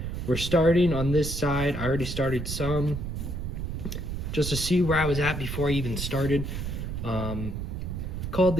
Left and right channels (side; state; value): right; noise; rumble, 5 dB below the sound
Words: We're starting on this side. I already started some, just to see where I was at before I even started. Called